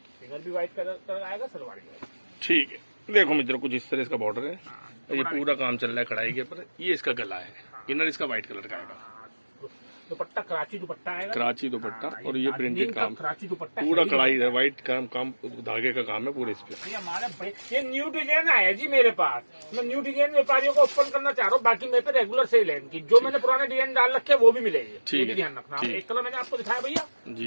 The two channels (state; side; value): inverted; both; correlation -1.00